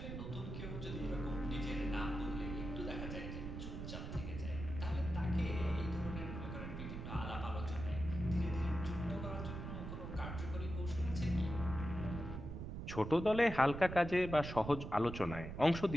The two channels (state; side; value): noise; right; rumble, 7 dB below the sound